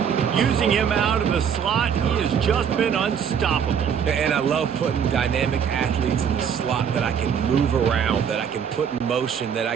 Using him out of the slot, he has just been unstoppable. And I love putting dynamic athletes in the slot that I can move around, that I can put in motion, that I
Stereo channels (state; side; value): quieter; left; 7.7 dB